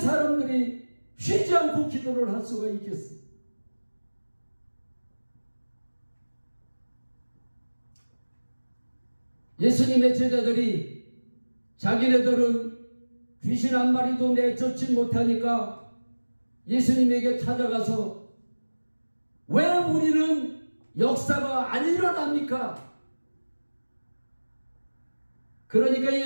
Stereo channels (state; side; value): inverted; both; correlation -1.00